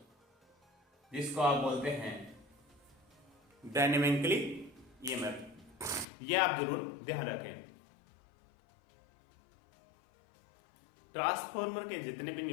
जिसको आप बोलते हैं डायनेमिकली ईएमएफ। ये आप जरूर ध्यान रखें। ट्रांसफार्मर के जितने भी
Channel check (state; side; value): drops out; right; at 6.1 s